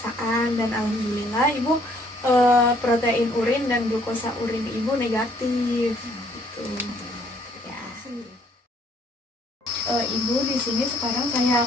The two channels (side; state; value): both; normal; correlation 0.64